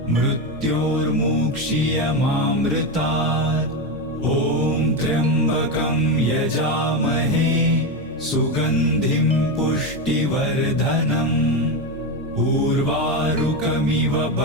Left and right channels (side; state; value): both; normal; correlation 0.13